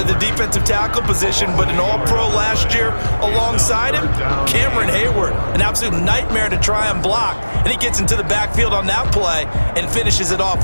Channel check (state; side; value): inverted; both; correlation -1.00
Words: the defensive tackle position, but an all-pro last year alongside him, Cameron Hayward, an absolute nightmare to try and block. And he gets into the backfield on that play and finishes it off